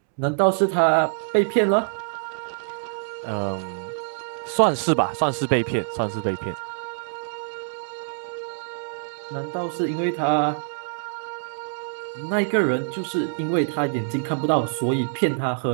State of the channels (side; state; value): left; silent; digital silence